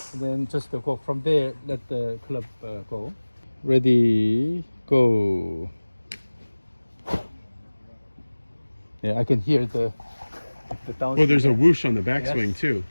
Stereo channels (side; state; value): both; inverted; correlation -1.00